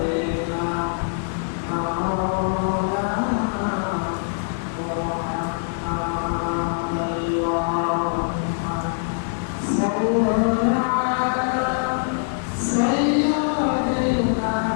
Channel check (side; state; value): right; silent; digital silence